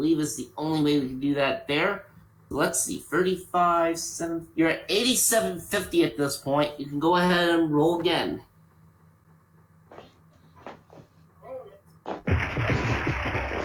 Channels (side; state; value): both; identical; correlation 1.00